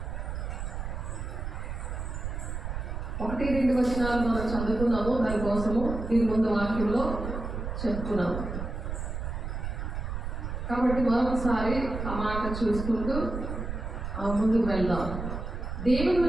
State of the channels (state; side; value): noise; right; rumble, 5 dB below the sound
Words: 1-2 వచనాలు మనం చదువుకున్నాము. దానికోసము దీని ముందు వాక్యంలో చెప్పుకున్నాము కాబట్టి మరొకసారి ఆ మాట చూసుకుంటూ ముందుకు వెళ్దాం. దేవుని